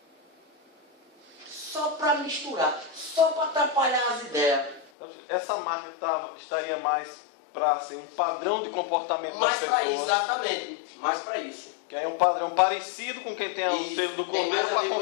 Só para misturar. Só para atrapalhar as ideias. Essa marca estaria mais para ser um padrão de comportamento das Mais para pessoas. exatamente. Mais para isso. Que é um padrão parecido com quem tem o Isso, selo do tem mais cordeiro a para ver com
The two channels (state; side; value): drops out; right; at 4.9 s